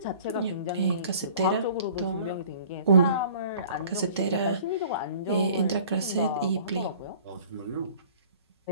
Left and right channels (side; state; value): both; inverted; correlation -0.49